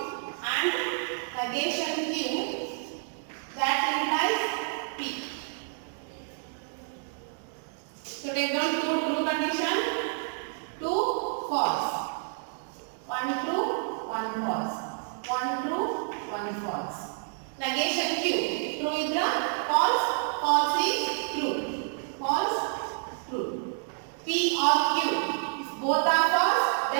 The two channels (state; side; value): silent; left; 58 dB below the other